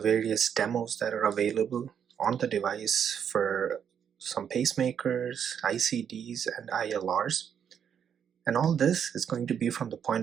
demos that are available on the device for some pacemakers, ICDs, and ILRs. And all this is going to be from the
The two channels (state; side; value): quieter; left; 8.1 dB